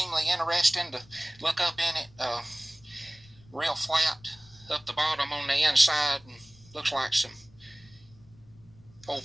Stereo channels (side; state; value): left; noise; rumble, 26 dB below the sound